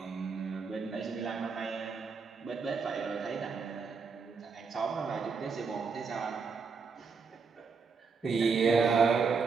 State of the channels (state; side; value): quieter; left; 5.1 dB